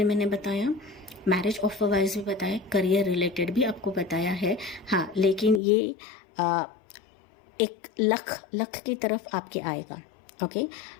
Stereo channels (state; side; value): drops out; right; at 5.6 s